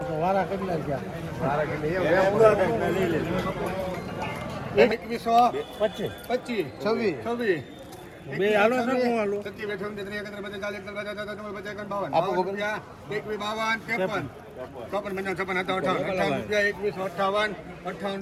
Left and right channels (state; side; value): identical; both; correlation 1.00